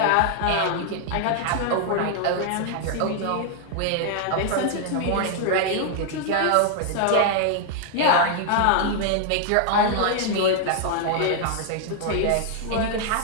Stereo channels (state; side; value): different; both; correlation 0.00